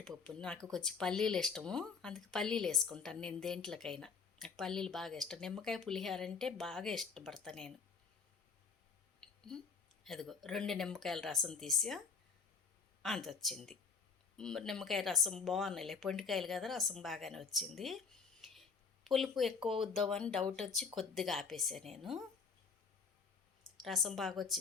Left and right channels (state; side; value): quieter; right; 5.6 dB